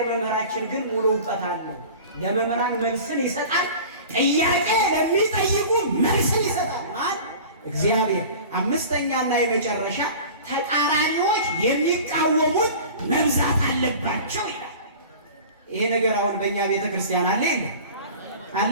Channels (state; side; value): inverted; both; correlation -0.39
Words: መምህራችን ግን ሙሉ እውቀት አለው። ለመምህራን መልስን ይሰጣል። ጥያቄ ለሚጠይቁ መልስን ይሰጣል። ማን? እግዚአብሔር። አምስተኛና የመጨረሻ ተቃራኒዎች የሚቃወሙት መብዛት አለባቸው ይላል። ይሄ ነገር አሁን በእኛ ቤተክርስቲያን አለ የለም? አለ